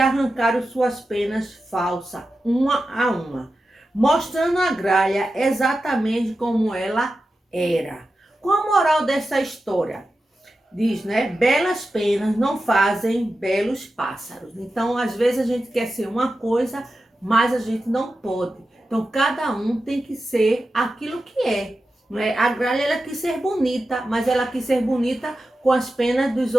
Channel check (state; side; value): normal; both; correlation 0.92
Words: suas penas falsas, uma a uma, mostrando a gralha exatamente como ela era. Qual a moral dessa história? Diz, né? Belas penas não fazem belos pássaros. Então, às vezes a gente quer ser uma coisa, mas a gente não pode. Então, cada um tem que ser aquilo que é. Não é? A gralha ela quis ser bonita, mas ela quis ser bonita com as penas dos